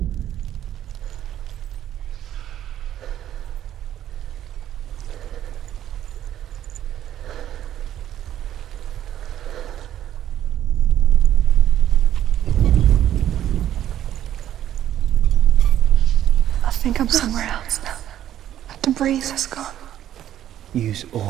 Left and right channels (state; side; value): quieter; left; 11.5 dB